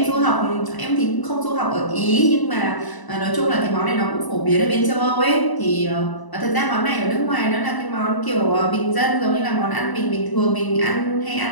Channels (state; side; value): late; right; 1.0 ms